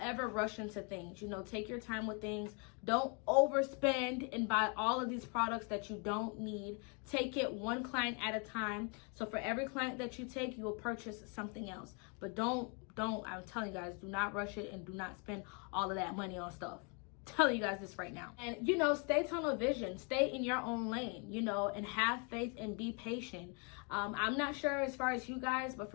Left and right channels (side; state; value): right; quieter; 35.2 dB